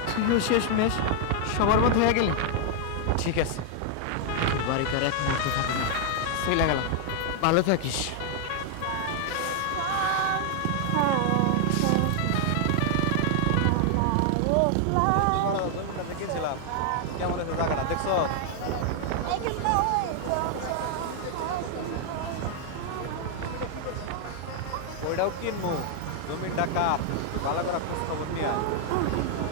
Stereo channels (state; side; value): different; both; correlation 0.00